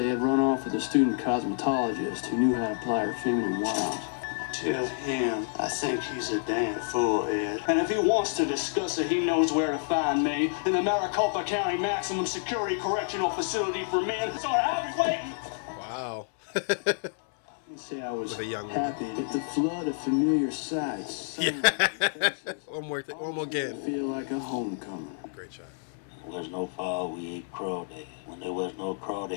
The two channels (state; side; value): silent; right; 59 dB below the other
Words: had run off with a student cosmetologist who knew how to apply her feminine wiles. Tell him I think he's a damn fool, Ed. And if he wants to discuss it, he knows where to find me in the Maricopa County Maximum Security Correctional Facility for Men. So I'll be waiting. Wow. I say I was With a young happy at the flood of familiar sights. Yeah. One more I again. feel like a homecoming. Great shot. There was no fall, we ate crawdad. When there was no